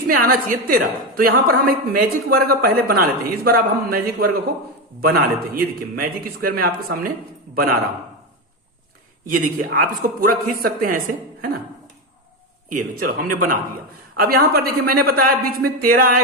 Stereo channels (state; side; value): normal; both; correlation 0.13